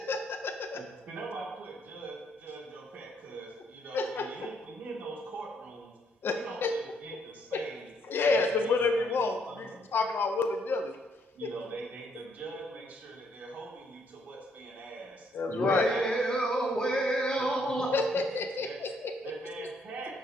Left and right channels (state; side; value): normal; both; correlation 0.70